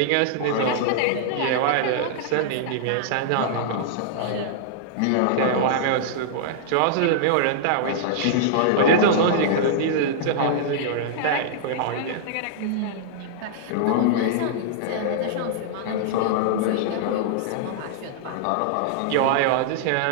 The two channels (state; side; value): different; both; correlation -0.01